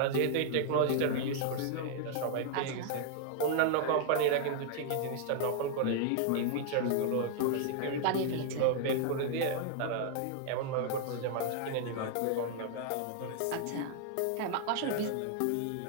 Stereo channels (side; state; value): both; different; correlation 0.00